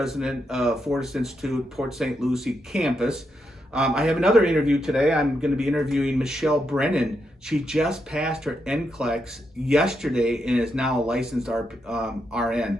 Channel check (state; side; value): normal; both; correlation 0.82